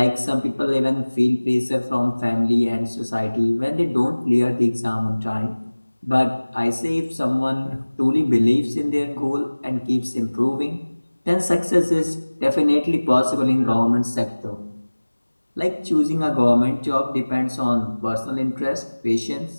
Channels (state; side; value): inverted; both; correlation -1.00